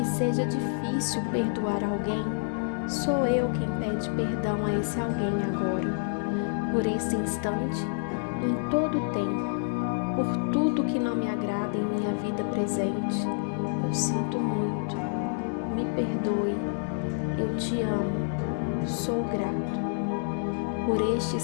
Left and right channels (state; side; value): silent; right; 59 dB below the other